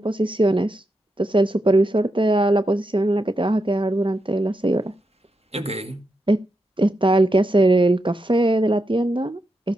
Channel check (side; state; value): both; normal; correlation 0.84